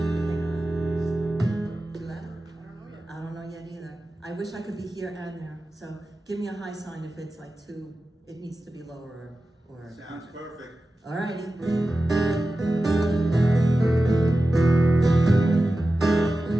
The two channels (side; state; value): both; normal; correlation 0.94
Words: I don't know yet either. I wish I could be here and there. So give me a high sign if it's like too, it needs to be lower or. Sounds perfect. All righty.